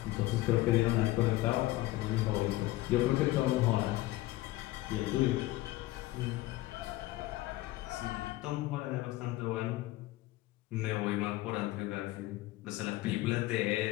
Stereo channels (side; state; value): right; quieter; 17.6 dB